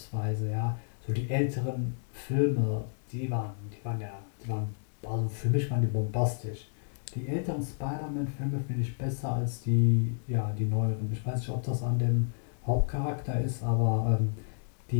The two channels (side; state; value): right; silent; digital silence